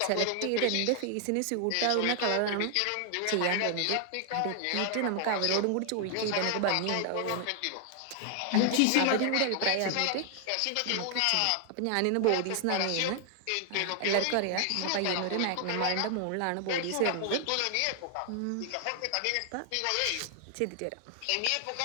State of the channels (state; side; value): different; both; correlation 0.00